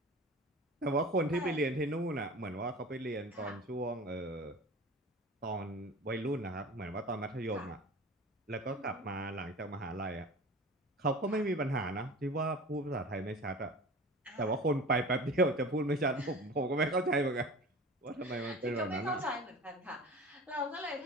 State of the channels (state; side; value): normal; both; correlation 0.37